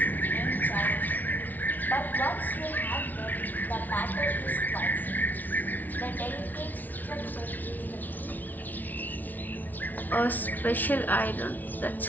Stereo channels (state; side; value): late; right; 0.081 ms